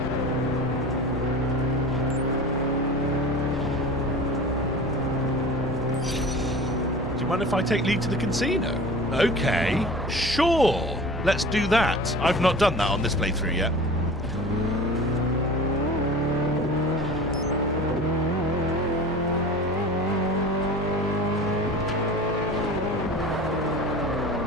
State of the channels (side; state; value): both; normal; correlation 0.37